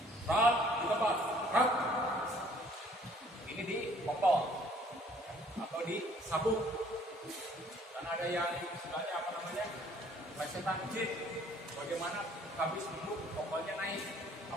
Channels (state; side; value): normal; both; correlation 0.58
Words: Rat di tempat, rat. Ini di kokol atau di sabuk. Karena ada yang istilahnya apa namanya? Plesetan jin. Bagaimana habis duduk kokolnya naik?